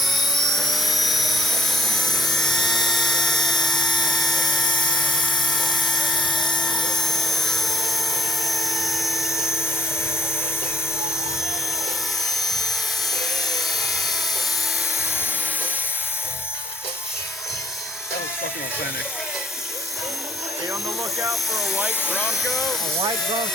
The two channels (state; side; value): normal; both; correlation 0.67